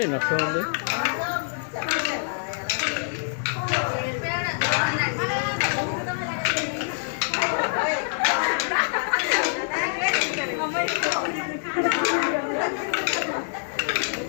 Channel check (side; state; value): right; silent; digital silence